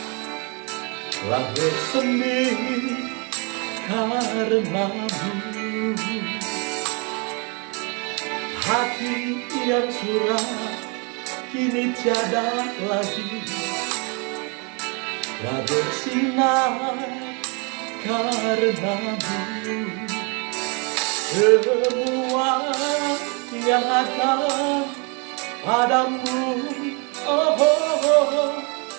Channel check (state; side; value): quieter; left; 33.3 dB